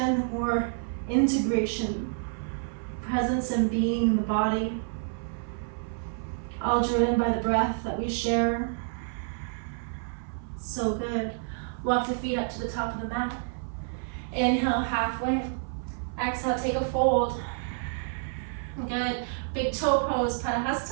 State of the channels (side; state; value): left; silent; 59 dB below the other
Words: the more integration, presence and being in the body, all driven by the breath that we share. So good. Walk the feet up to the top of the mat. Inhale, halfway. Exhale, take a fold. Good. Big toe pose,